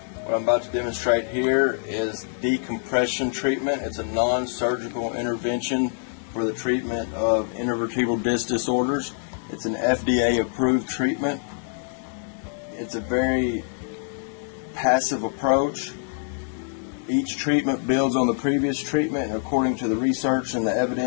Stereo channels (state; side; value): silent; right; digital silence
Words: What I'm about to demonstrate here is decompression treatment. It's a non-surgical intervention for the treatment of intervertebral disc disorders. It's an FDA approved treatment. It's a very passive approach. Each treatment builds on the previous treatment, and according to the research and the